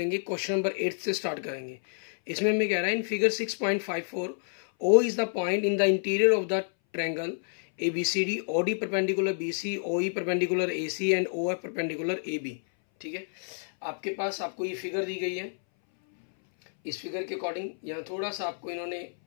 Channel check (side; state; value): right; silent; 59 dB below the other